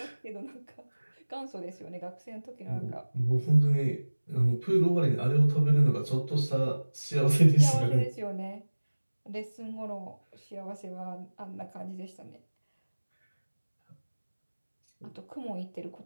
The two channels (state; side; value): inverted; both; correlation -1.00